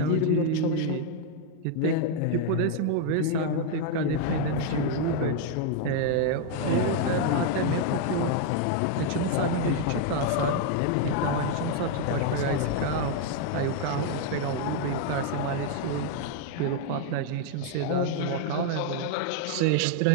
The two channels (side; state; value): both; different; correlation 0.00